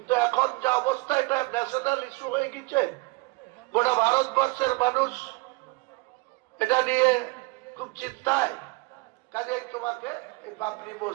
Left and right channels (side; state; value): left; quieter; 25.7 dB